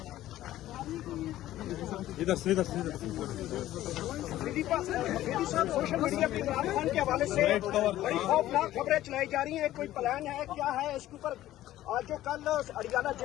ادھر سے سوشل میڈیا پہ عمران خان کے حوالے سے بڑی خوفناک خبریں چلائی جا رہی ہیں کوئی پلان ہے کیا ہے اس کے اوپر آج جو کل اڈیالہ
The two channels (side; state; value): right; quieter; 14.2 dB